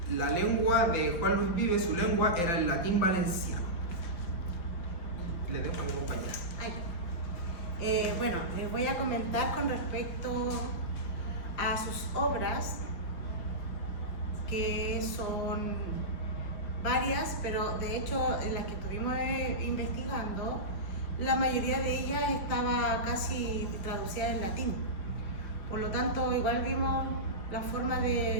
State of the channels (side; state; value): right; late; 5.7 ms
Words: La lengua de Juan Luis Vives, su lengua, era el latín valenciano. Le dejo a mi compañera. Bueno, les voy a comentar con respecto a sus obras, que son varias, pero de hecho en las que estuvimos investigando, la mayoría de ellas estaba casi traducida en latín. Por lo tanto, igual vimos la forma